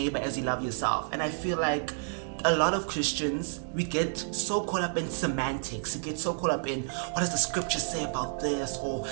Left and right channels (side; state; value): left; silent; 58 dB below the other